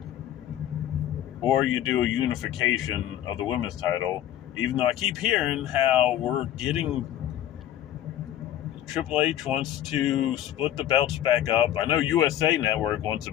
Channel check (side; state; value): right; quieter; 11.8 dB